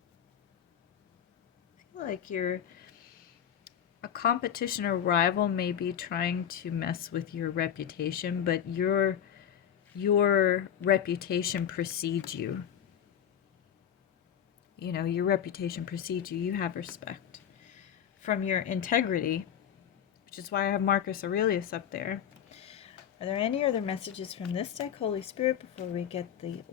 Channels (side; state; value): right; quieter; 9.2 dB